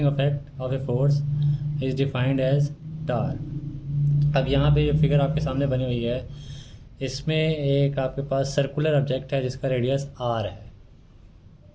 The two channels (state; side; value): identical; both; correlation 1.00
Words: effect of a force is defined as torque. अब यहाँ पे ये फिगर आपके सामने बनी हुई है, इसमें एक आपके पास सर्कुलर ऑब्जेक्ट है जिसका रेडियस आर है,